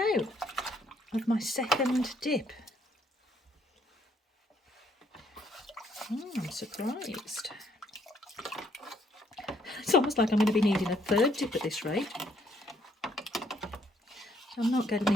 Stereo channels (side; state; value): both; normal; correlation 0.68